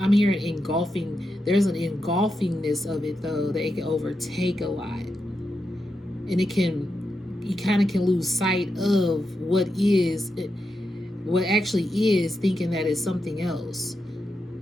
I'm hearing engulfing. There's an engulfingness of it though, that it can overtake a lot, and you kind of can lose sight of what actually is, thinking that it's something else,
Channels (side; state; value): both; normal; correlation 0.86